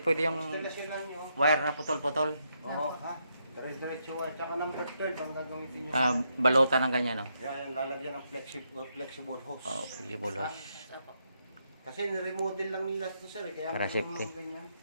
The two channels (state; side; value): inverted; both; correlation -0.79